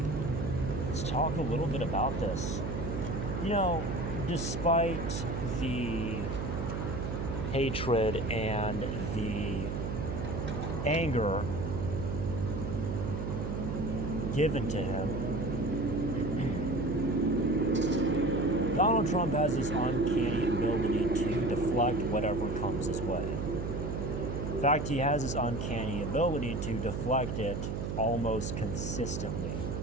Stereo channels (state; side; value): noise; right; hum, 3 dB below the sound